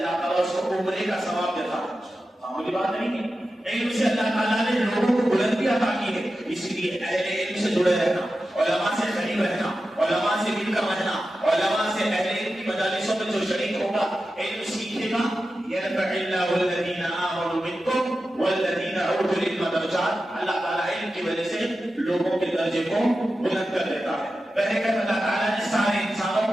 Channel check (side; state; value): both; normal; correlation 0.92